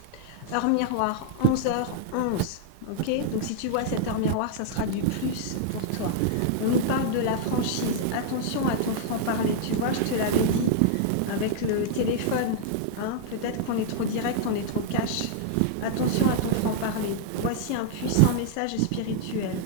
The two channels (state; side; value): different; both; correlation -0.01